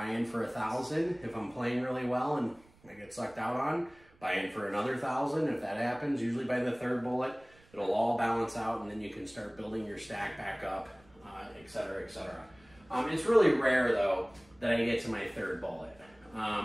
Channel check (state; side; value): noise; right; rumble, 28 dB below the sound